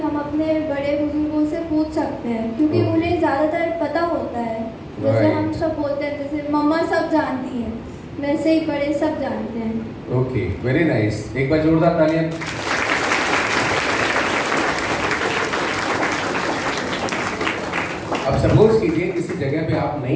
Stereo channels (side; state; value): both; identical; correlation 1.00